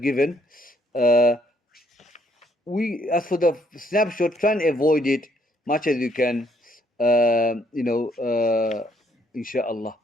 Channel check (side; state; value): both; normal; correlation 0.68